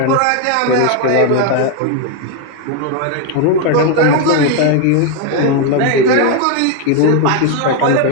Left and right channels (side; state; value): both; different; correlation 0.01